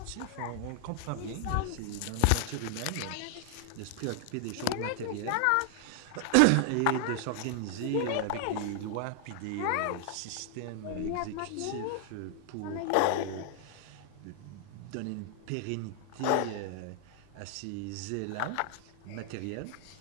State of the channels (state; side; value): different; both; correlation 0.00